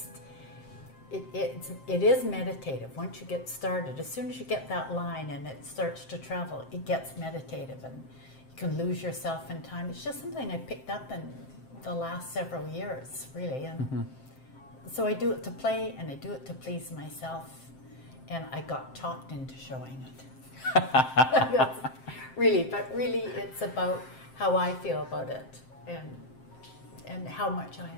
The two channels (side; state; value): right; late; 7.6 ms